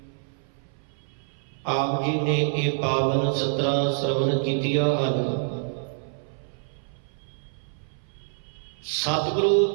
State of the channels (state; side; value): silent; left; 57 dB below the other